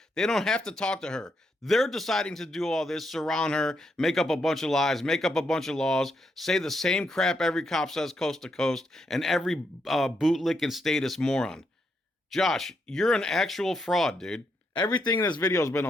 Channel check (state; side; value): normal; both; correlation 0.79